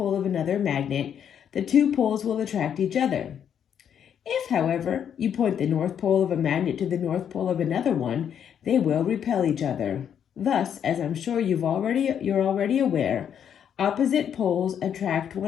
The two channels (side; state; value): right; quieter; 8.7 dB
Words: of another magnet, the two poles will attract each other. If, however, you point the North Pole of a magnet to the North Pole of another one, they will repel each other. Thus, as I'm sure you're already aware, opposite poles attract